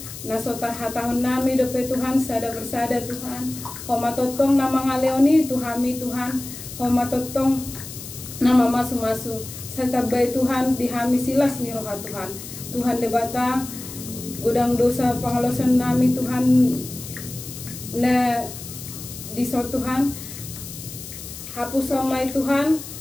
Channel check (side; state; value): left; noise; hiss, 12 dB below the sound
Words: Nasotar hatahon nami dope Tuhan sada bersada Tuhan. Homa totong na mga leoni Tuhami Tuhan. Homa totong nama masu-masu serta baik Tuhan dihami silas ni roha Tuhan. Tuhan debata gudang dosa pangalosan nami Tuhan na diso Tuhan hapus samai Tuhan